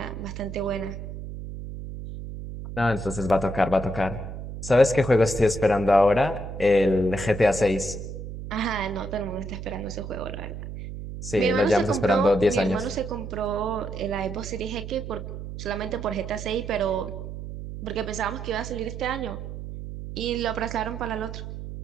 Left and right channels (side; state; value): right; noise; hum, 9 dB below the sound